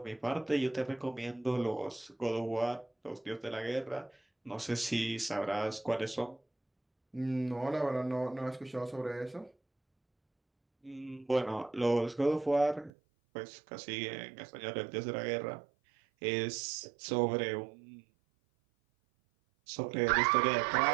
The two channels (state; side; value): drops out; left; at 12.9 s